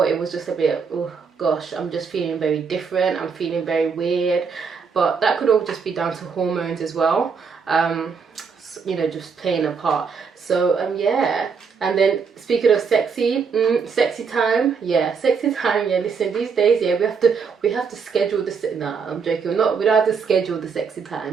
it was just a bit, oh gosh, I'm just feeling very different. I'm feeling very weird. But that could all just be down to hormones as well. You know, just playing a part. So yeah. And then speaking of sexy, sexy time, yeah, listen, these days, yeah, we have to schedule this. Nah, I'm joking. We don't have to schedule the sexy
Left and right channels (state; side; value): quieter; left; 5.7 dB